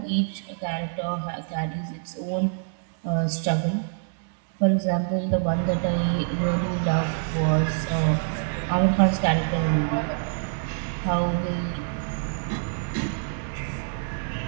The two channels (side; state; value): left; silent; 61 dB below the other